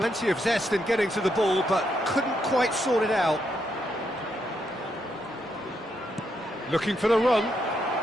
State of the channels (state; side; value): normal; both; correlation 0.79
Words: of zest in getting to the ball, but couldn't quite sort it out. Looking for the run.